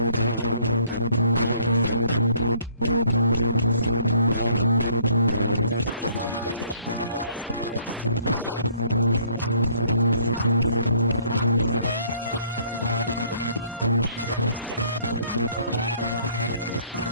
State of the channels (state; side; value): inverted; both; correlation -0.61